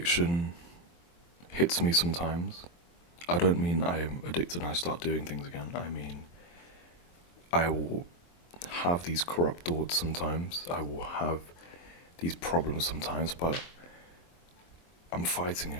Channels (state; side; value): late; right; 23 ms